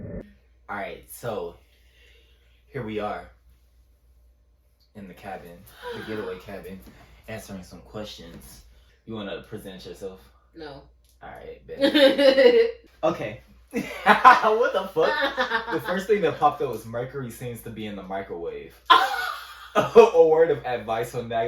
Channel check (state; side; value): identical; both; correlation 1.00